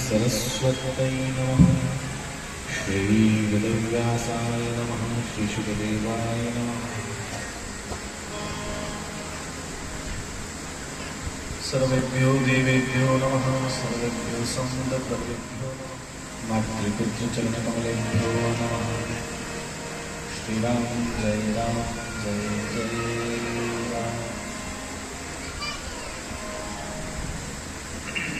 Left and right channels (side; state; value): both; identical; correlation 1.00